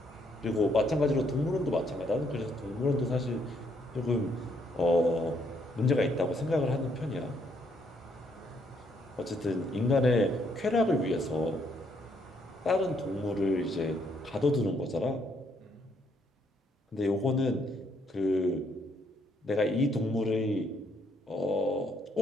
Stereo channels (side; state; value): both; normal; correlation 0.71